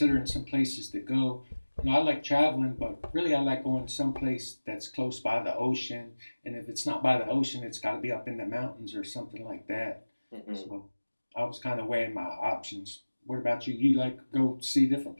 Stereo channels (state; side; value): inverted; both; correlation -1.00